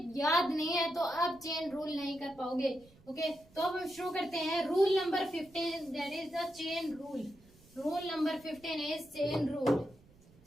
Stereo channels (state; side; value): noise; right; rumble, 26 dB below the sound